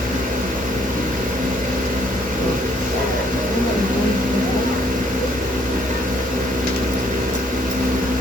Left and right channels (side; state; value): both; normal; correlation 0.66